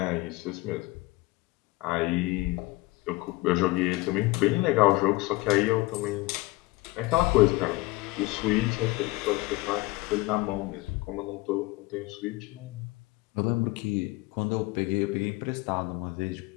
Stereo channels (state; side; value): quieter; right; 21.4 dB